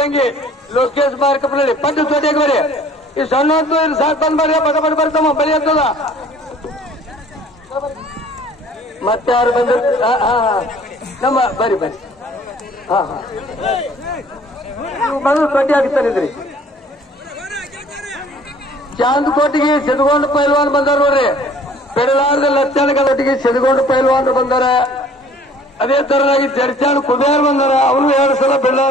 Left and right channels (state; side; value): normal; both; correlation 0.53